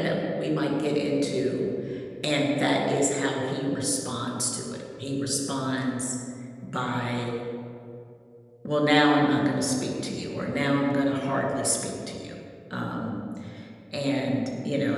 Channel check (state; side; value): identical; both; correlation 1.00